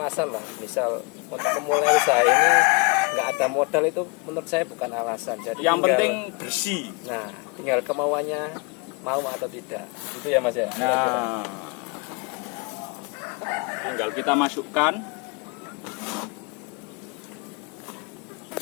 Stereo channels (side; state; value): right; quieter; 31.4 dB